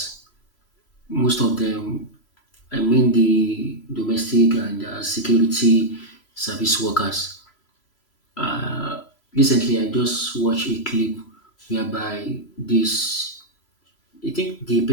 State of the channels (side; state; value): right; late; 3.0 ms